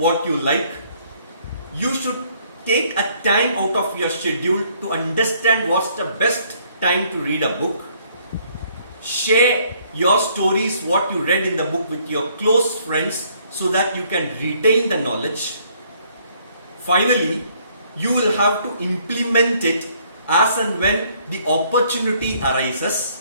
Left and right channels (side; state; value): both; inverted; correlation -0.65